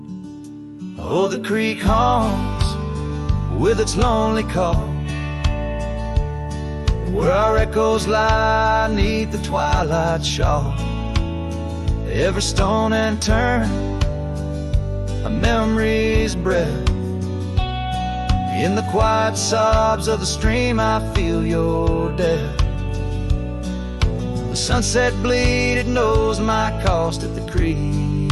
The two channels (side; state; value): both; identical; correlation 1.00